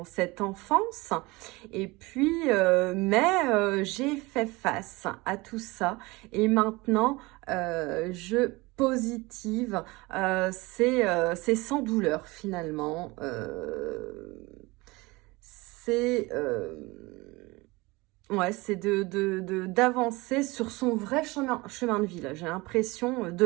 cette enfance, et puis mais j'ai fait face à tout ça et maintenant je positive, c'est sans douleur finalement, c'est ouais, c'est d'avancer sur son vrai chemin de vie, là. J'ai l'impression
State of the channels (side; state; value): left; quieter; 23.1 dB